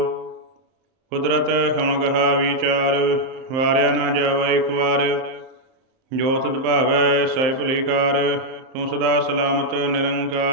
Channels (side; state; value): left; late; 31 ms